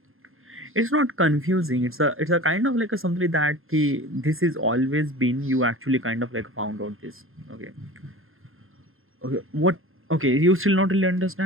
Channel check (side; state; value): left; late; 0.60 ms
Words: It's not confusing, it's a kind of like a something that this is always been, you actually kind of like found out this. Okay. Okay, what? Okay, you still not really